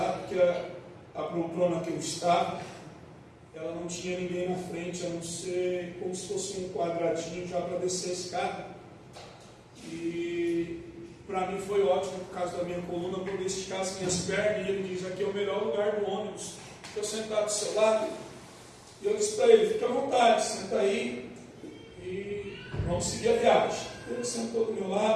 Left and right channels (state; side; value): identical; both; correlation 1.00